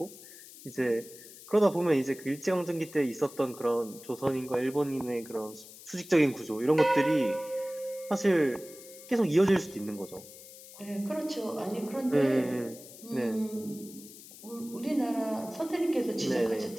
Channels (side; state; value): left; noise; hiss, 17 dB below the sound